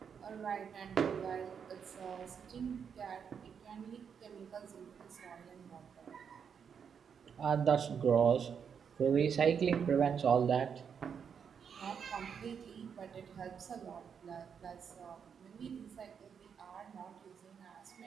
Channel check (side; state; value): left; quieter; 7.1 dB